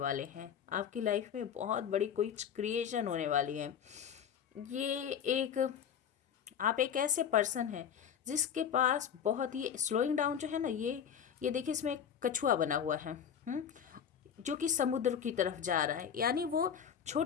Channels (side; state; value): right; quieter; 8.2 dB